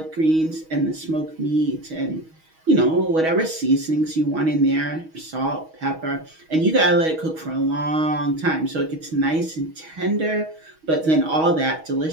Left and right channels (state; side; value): late; left; 6.3 ms